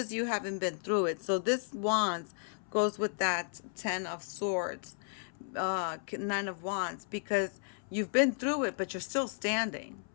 you having been through it. So this Wands goes with that Ten of Swords, Nine of Wands, because you've been through it, but you're still standing.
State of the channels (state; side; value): silent; right; 55 dB below the other